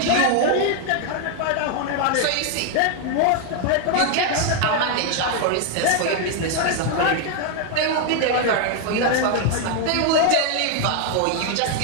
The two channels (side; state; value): both; different; correlation 0.00